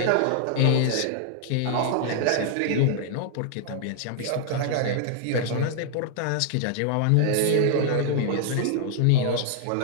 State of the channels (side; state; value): both; different; correlation 0.00